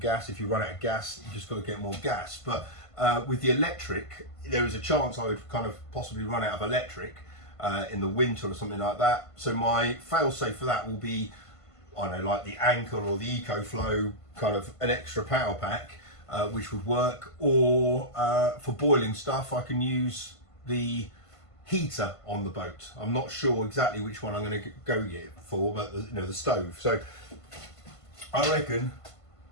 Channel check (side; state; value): right; late; 1.5 ms